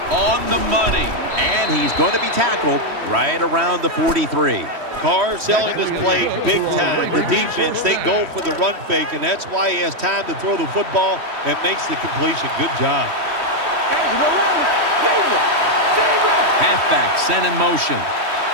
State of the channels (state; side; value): late; left; 3.1 ms